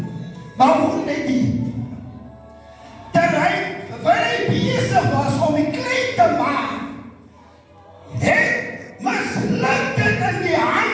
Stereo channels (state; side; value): identical; both; correlation 1.00